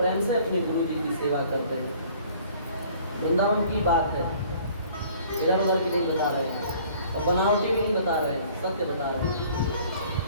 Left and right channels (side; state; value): both; inverted; correlation -0.54